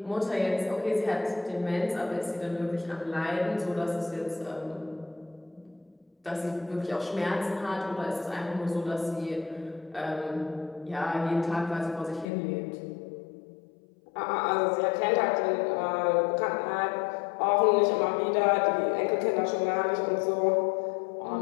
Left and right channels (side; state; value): right; drops out; at 12.2 s